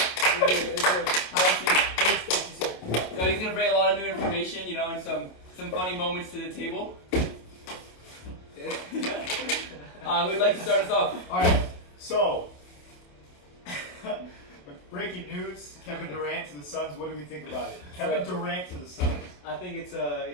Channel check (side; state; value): right; late; 27 ms